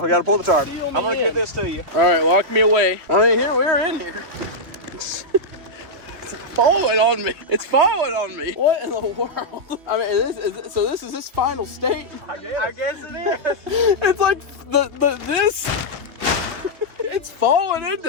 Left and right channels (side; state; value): left; late; 3.1 ms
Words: gotta pull the tarp. Seal I'm me gonna in. get this to you. All right, walk me away. I mean, here we're in here. It's falling on me. It's falling on me. What in the world? I mean, so this is this final state. I guess it is. It's like this. It's falling